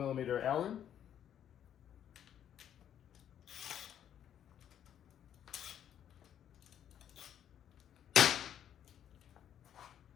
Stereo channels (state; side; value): quieter; right; 9.9 dB